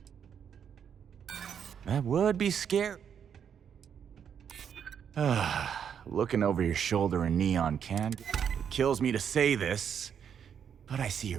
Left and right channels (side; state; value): left; quieter; 8.0 dB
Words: That would be scary. Looking over your shoulder in neon can... It kills me to say this, but I see